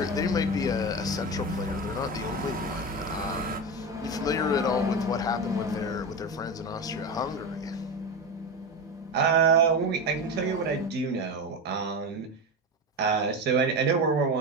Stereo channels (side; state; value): both; normal; correlation 0.21